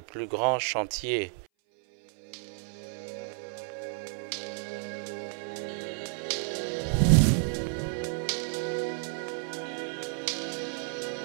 plus grands chantiers.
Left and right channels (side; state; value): left; silent; 57 dB below the other